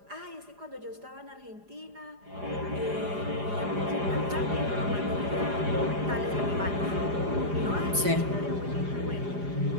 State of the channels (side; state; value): left; late; 4.9 ms